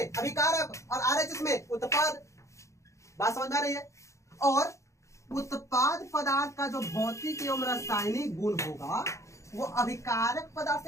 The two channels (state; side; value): late; right; 0.15 ms